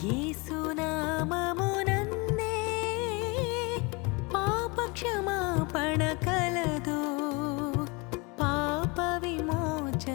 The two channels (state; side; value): quieter; right; 28.0 dB